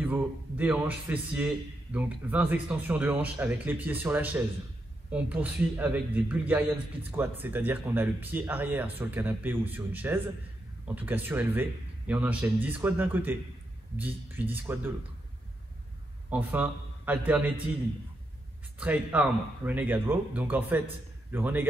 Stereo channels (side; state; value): both; normal; correlation 0.83